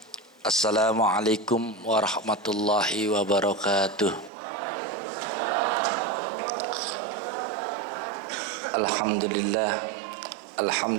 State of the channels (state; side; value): drops out; left; at 4.3 s